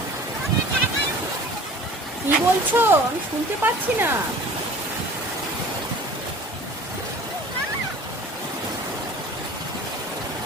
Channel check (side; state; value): both; normal; correlation 0.45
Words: কি বলছো? আমি শুনতে পাচ্ছি না।